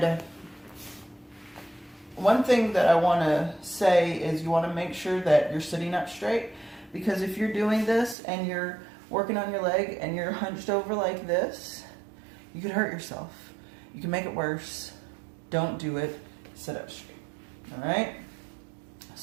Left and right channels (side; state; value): left; drops out; at 8.2 s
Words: one thing that I want to say is you want to make sure that you're sitting up straight, because if you're doing this and you're working on your leg and you're hunched over like this, you could hurt yourself. You can make it worse. Don't do it. Sit up straight. All right?